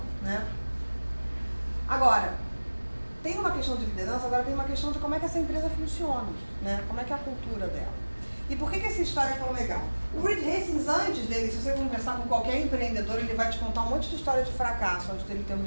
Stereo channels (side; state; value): both; inverted; correlation -1.00